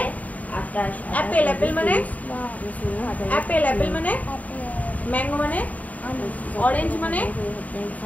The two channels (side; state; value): right; late; 0.072 ms